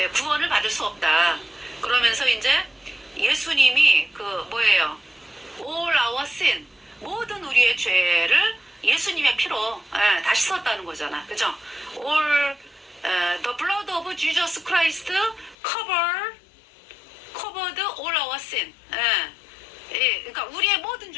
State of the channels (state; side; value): drops out; right; at 15.6 s